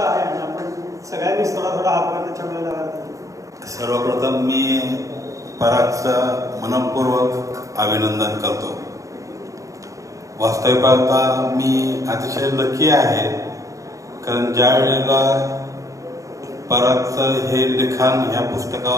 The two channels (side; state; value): left; late; 0.16 ms